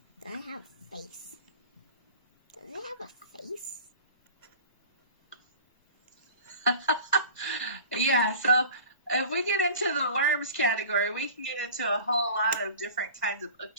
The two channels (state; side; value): inverted; both; correlation -0.40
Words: Does it have a face? Does it have a face? Yeah, so if we get into the worms category, we can get into a whole lot of different kinds of